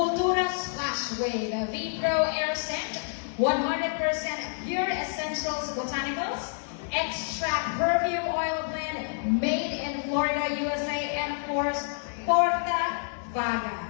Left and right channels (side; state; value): right; silent; digital silence